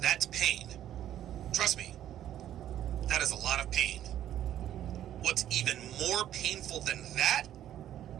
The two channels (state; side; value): quieter; left; 11.6 dB